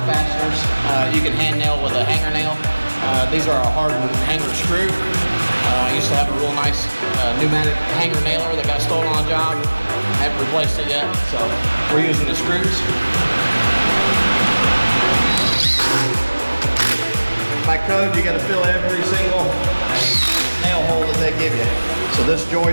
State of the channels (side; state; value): both; inverted; correlation -1.00